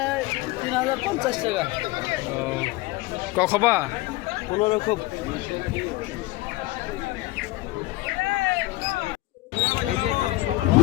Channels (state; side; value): quieter; right; 19.5 dB